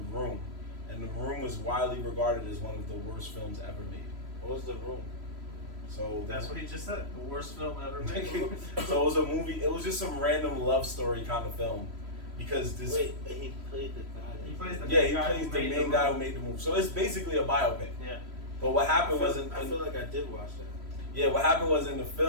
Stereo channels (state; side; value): late; left; 3.0 ms